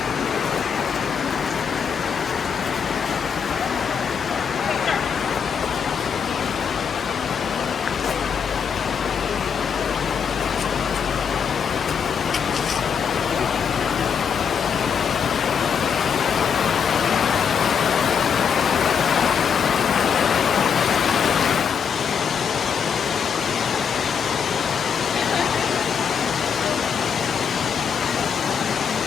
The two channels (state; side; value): quieter; right; 6.9 dB